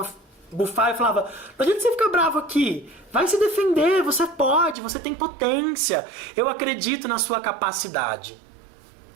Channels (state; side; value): drops out; left; at 4.8 s